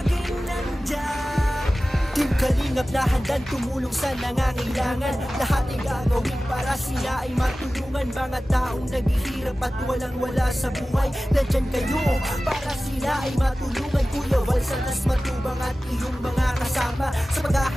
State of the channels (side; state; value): both; normal; correlation 0.96